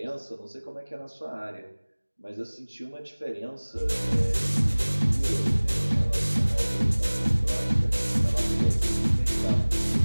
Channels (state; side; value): inverted; both; correlation -1.00